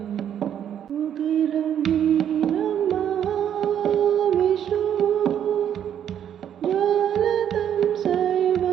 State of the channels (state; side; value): quieter; left; 9.6 dB